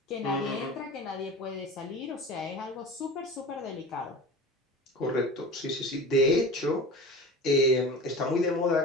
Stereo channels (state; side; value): normal; both; correlation 0.34